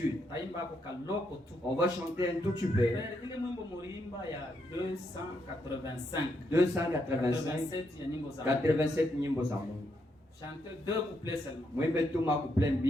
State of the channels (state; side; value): normal; both; correlation 0.78